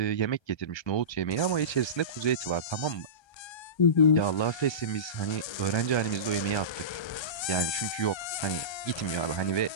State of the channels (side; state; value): right; late; 1.3 ms